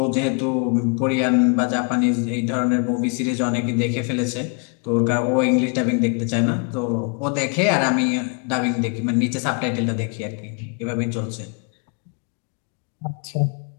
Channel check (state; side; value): quieter; right; 37.8 dB